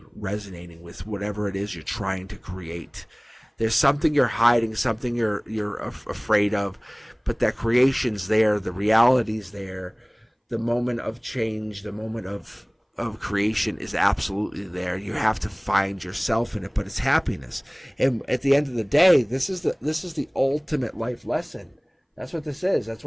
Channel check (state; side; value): identical; both; correlation 1.00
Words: resonating with whatever it is you're trying to create. There's something you're hiding, something you're afraid of, but that creation's there, the reality's there, the moment of change, the moment of of creation is absolutely there. You have to find yourself in it, but it's happiness. And at the end of the day, this is the ultimate life lesson. That's what this is. That's